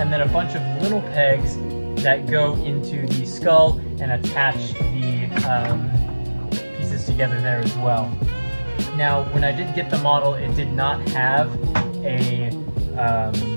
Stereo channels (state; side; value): inverted; both; correlation -1.00